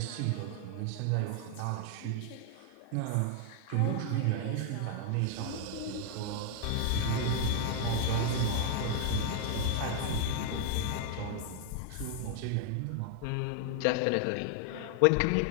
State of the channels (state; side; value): different; both; correlation 0.00